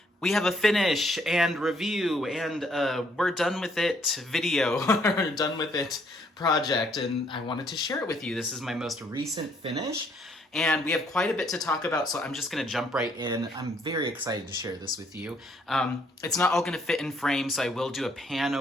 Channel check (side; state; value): both; normal; correlation 0.67